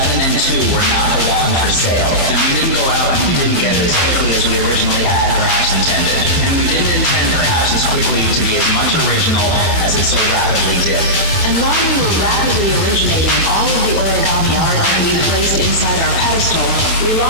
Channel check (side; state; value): right; late; 12 ms